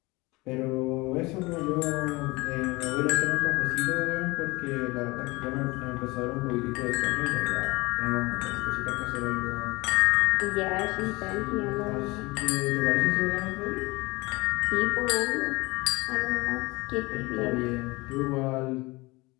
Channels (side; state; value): right; quieter; 23.0 dB